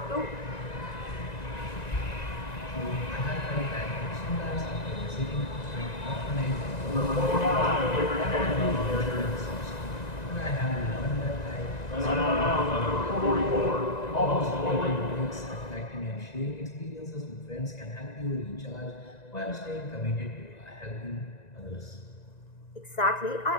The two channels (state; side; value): late; right; 1.9 ms